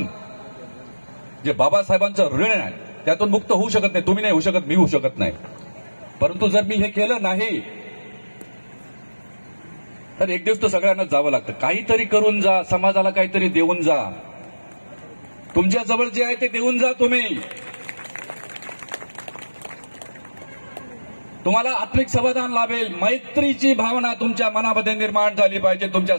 जे बाबासाहेबांचं ऋण आहे त्यातून मुक्त होऊ शकत नाही। तुम्ही नाही होऊ शकत, मी होऊ शकत नाही। परंतु जर मी हे केलं नाही तर एक दिवस तर सगळ्यांना जावं लागतं। काहीतरी करून जा, समाजाला काहीतरी देऊन जा। तुमच्या जवळ जे आहे ते देऊन जा तुम्ही। तुम्हाला आत्मिक समाधान लाभेल। मैत्रीची भावना तुमच्या मनामध्ये निर्माण झाली पाहिजे, तुमच्या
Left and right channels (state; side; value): inverted; both; correlation -1.00